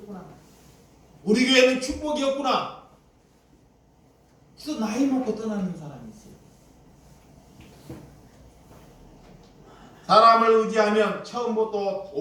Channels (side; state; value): both; identical; correlation 1.00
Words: 우리 교회는 축복이 없구나. 그래서 나이 먹고 떠나는 사람이 있어요. 사람을 의지하면 처음부터